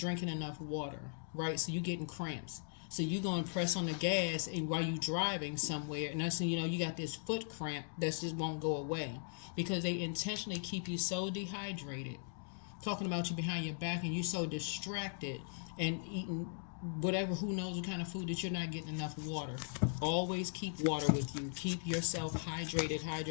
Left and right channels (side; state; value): right; silent; digital silence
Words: enough water, right? So you're getting cramps. So you're going to press on the gas and while you're driving somewhere, and that's, you know, you got this foot cramp that just won't go away because they intentionally keep you so dehydrated, talking about you behind your back, and you're so distracted and eating whatever, who knows what kind of food, that you're not getting enough water. Always keep water with you. Keep yourself